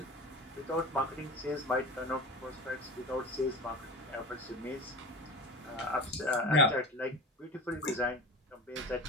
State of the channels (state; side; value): normal; both; correlation 0.32